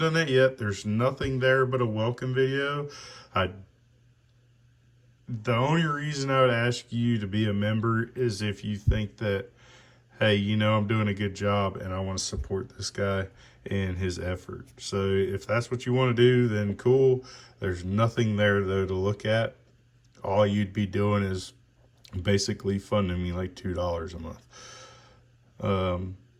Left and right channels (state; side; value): identical; both; correlation 1.00